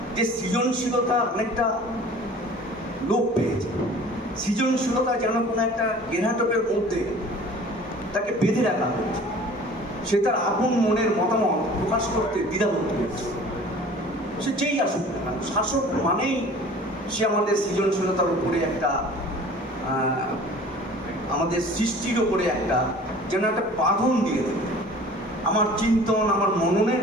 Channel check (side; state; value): both; normal; correlation 0.46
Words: যে সৃজনশীলতা অনেকটা লোপ পেয়েছে। সৃজনশীলতা যেন কোনো একটা গেরাটকের মধ্যে তাকে বেঁধে রাখা হয়েছে, সে তার আপন মনের মতামত প্রকাশ করতে দ্বিধাবোধ করেছে। সে যেই আসুক না কেন, শাসক মানেই সে আমাদের সৃজনশীলতার উপরে একটা আমাদের সৃষ্টির ওপরে একটা যেন একটা বাঁধন দিয়ে দেবে। আমার চিন্তন, আমার মননের